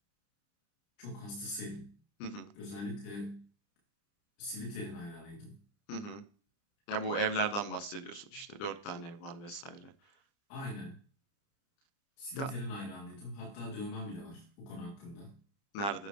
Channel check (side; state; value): right; late; 30 ms